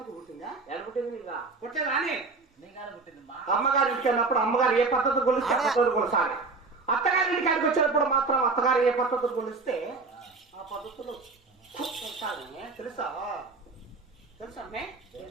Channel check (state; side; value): quieter; left; 4.0 dB